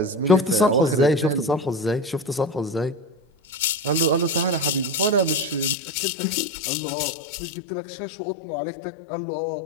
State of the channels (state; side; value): drops out; right; at 5.8 s